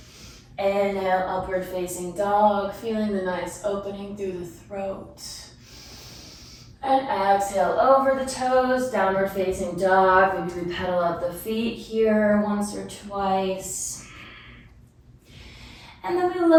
Inhale, upward facing dog, feeling the nice opening through the throat. And exhale over the toes, downward facing dog. Maybe we pedal up the feet here once or twice. And then we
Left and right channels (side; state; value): both; identical; correlation 1.00